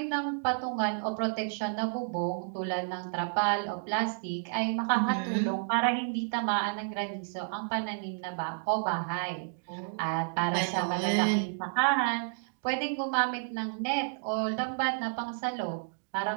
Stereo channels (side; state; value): left; silent; digital silence